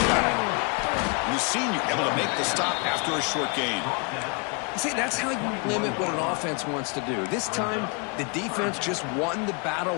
back. And the senior able to make the stop after a short gain. See, that's how you limit what an offense wants to do. This time, the defense just won the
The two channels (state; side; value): quieter; right; 34.8 dB